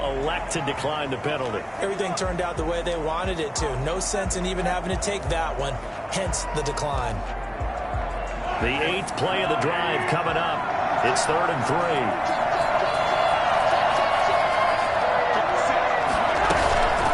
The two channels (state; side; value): identical; both; correlation 1.00